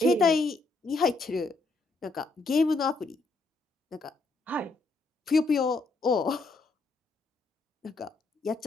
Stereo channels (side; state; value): right; quieter; 3.4 dB